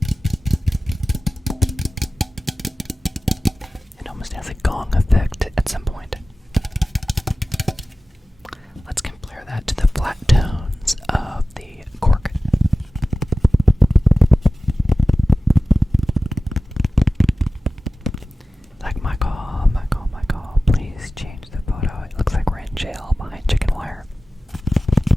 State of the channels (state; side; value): normal; both; correlation 0.96